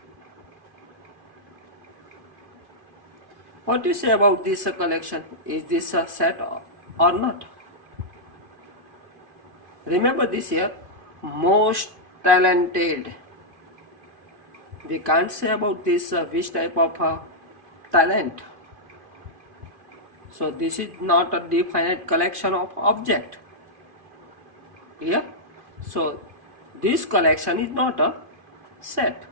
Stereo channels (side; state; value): left; late; 2.5 ms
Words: What do you say about this collection? Is this a set or not? Remember this here, most talented. We can't say about this which type of talent. So this is not a definite collection of object. Clear? So this collection is not a set.